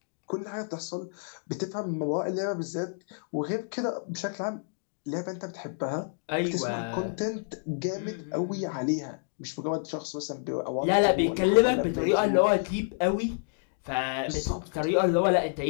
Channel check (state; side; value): silent; right; digital silence